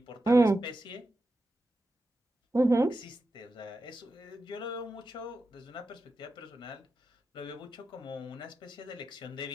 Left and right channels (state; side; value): normal; both; correlation 0.90